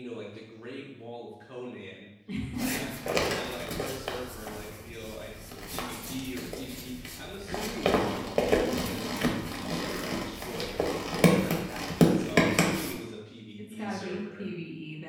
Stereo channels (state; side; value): identical; both; correlation 1.00